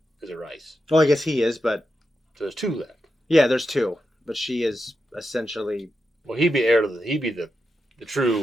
is a Rice, Well, I guess he is, but so there's two left. yeah, there's two. But she is essentially Well, he'd be heir to he'd be the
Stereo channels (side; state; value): both; normal; correlation 0.88